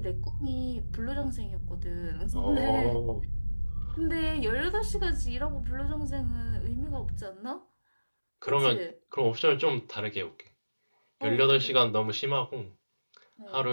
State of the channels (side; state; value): both; inverted; correlation -1.00